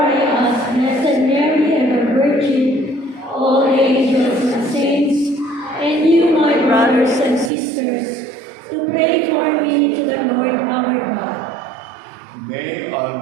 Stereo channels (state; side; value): drops out; left; at 7.5 s